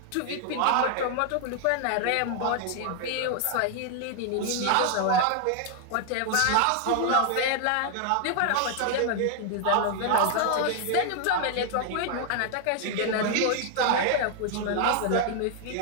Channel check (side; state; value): both; different; correlation 0.00